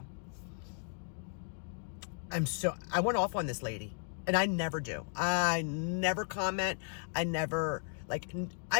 I went off on this lady, and I never do. I never comment. I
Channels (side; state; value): right; silent; 54 dB below the other